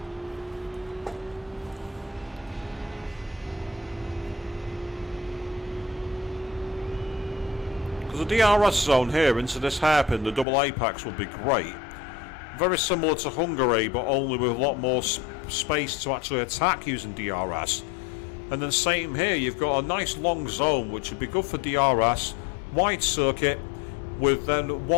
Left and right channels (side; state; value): right; drops out; at 10.5 s